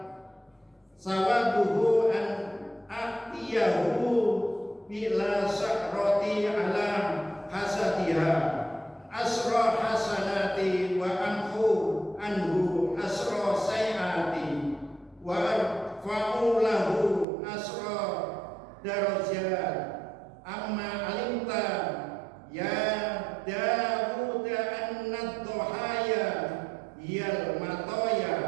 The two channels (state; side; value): drops out; left; at 17.2 s